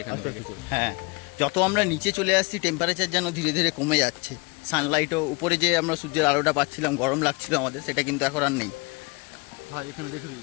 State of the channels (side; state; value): right; quieter; 28.5 dB